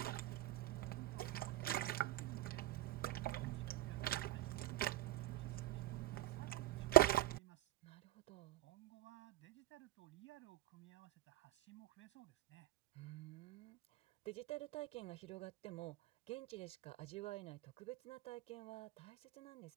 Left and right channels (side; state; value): left; quieter; 16.0 dB